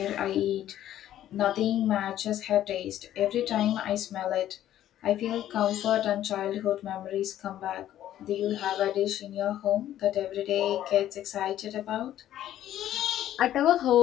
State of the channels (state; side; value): quieter; right; 12.2 dB